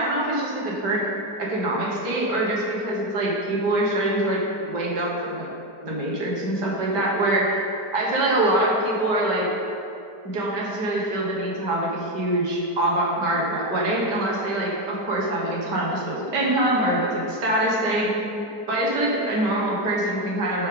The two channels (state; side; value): late; left; 4.4 ms